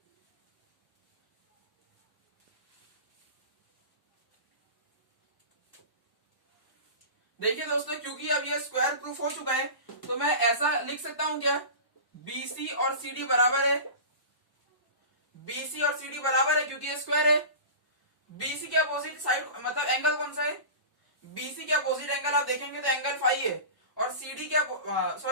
देखिए दोस्तों, क्योंकि अब ये स्क्वायर प्रूफ हो चुका है, तो मैं ऐसा लिख सकता हूं क्या, बीसी और सीडी बराबर है। बीसी और सीडी बराबर है क्योंकि ये स्क्वायर है। बीसी के अपोजिट साइड मतलब एंगल कौन सा है, बीसी के अपोजिट एंगल आप देखेंगे तो एंगल 5 है, और सीडी के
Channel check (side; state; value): right; late; 1.0 ms